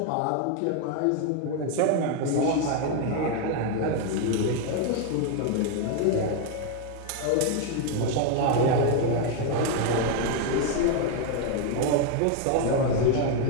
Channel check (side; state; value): both; different; correlation 0.01